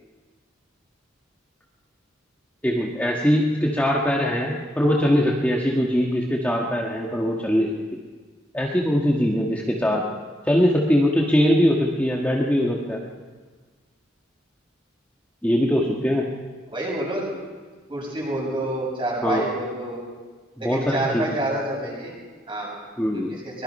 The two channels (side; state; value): both; normal; correlation 0.80